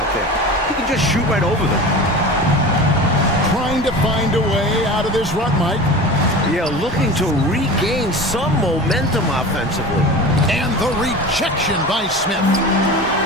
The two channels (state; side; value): normal; both; correlation 0.33